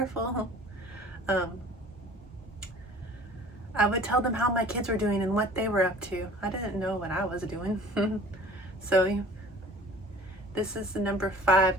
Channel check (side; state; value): both; normal; correlation 0.47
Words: I would tell them how my kids were doing and what they were up to. I didn't know what I was doing. So this is the number 5,